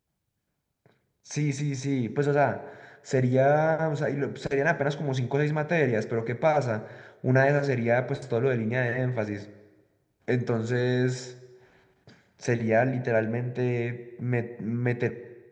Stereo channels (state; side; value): identical; both; correlation 1.00